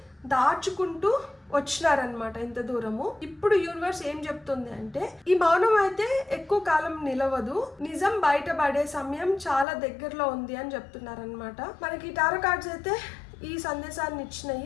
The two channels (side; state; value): right; drops out; at 9.7 s